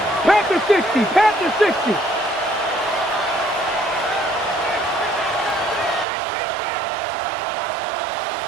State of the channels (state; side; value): drops out; left; at 6.1 s